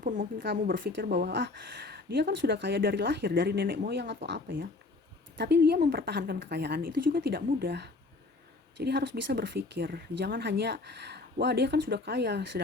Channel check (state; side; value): quieter; right; 3.5 dB